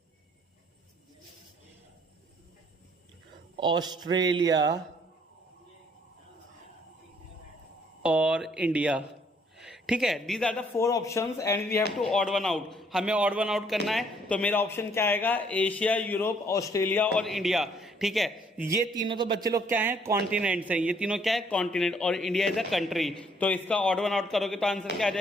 Australia और इंडिया। ठीक है, these are the 4 options and we have to odd one out. हमें ऑड वन आउट करना है, तो मेरा ऑप्शन क्या आएगा? एशिया, यूरोप, ऑस्ट्रेलिया और इंडिया। ठीक है, ये तीनों तो बच्चे लोग क्या हैं? कॉन्टिनेंट्स हैं। ये तीनों क्या है? कॉन्टिनेंट, और इंडिया इज अ कंट्री। तो इसका ऑड वन आउट करोगे तो आंसर क्या आ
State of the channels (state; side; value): normal; both; correlation 0.65